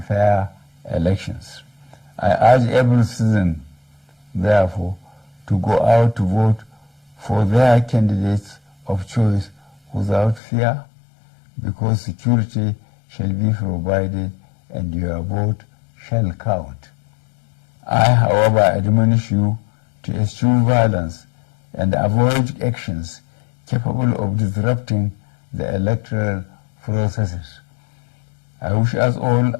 fair elections. I urge every citizen, therefore, to go out to vote for their candidates of choice without fear, because security shall be provided and your vote shall count. I, however, admonish you to eschew violence and avoid actions capable of disrupting the electoral processes. I wish us all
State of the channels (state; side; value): drops out; right; at 10.4 s